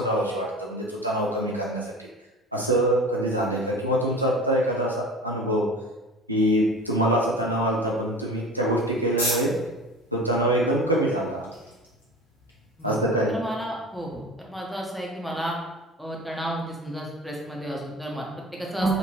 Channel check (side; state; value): both; normal; correlation 0.36